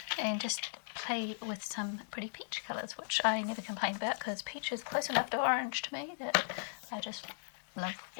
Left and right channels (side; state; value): right; silent; digital silence